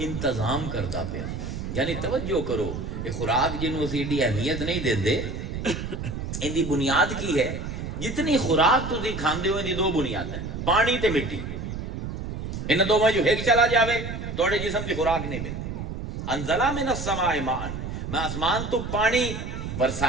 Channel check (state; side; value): noise; right; rumble, 6 dB below the sound